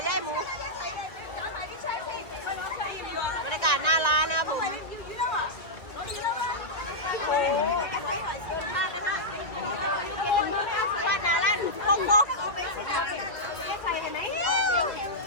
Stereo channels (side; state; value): right; late; 1.6 ms